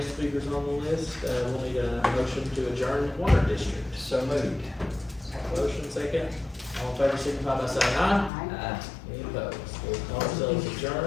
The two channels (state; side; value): drops out; right; at 8.3 s